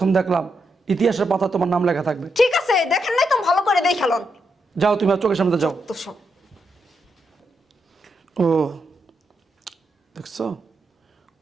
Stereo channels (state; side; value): normal; both; correlation 0.82